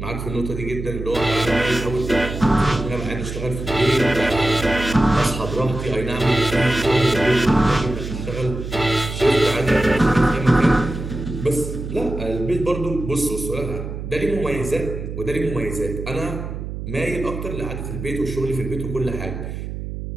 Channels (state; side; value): noise; right; hum, 7 dB below the sound